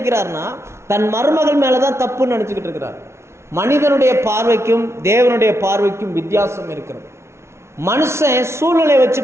தன் மருமகள் மேலதான் தப்புன்னு நினைச்சுக்கிட்டு இருக்கிறார். மனிதனுடைய பார்வைக்கும் தேவனுடைய பார்வைக்கும் வித்தியாசம் இருக்கிறது. மனுஷன் சூழ்நிலையை வச்சு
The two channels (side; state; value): left; late; 0.13 ms